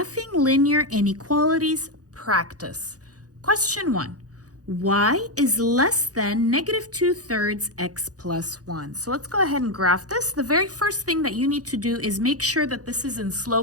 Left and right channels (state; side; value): late; left; 0.67 ms